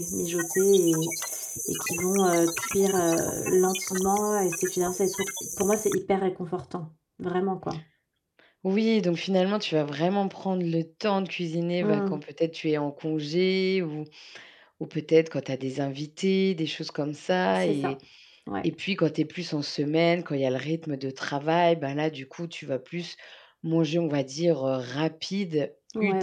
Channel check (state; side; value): identical; both; correlation 1.00